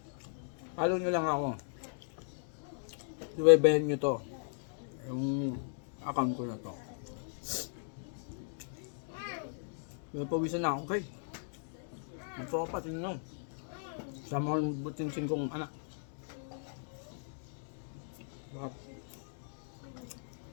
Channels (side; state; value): right; silent; digital silence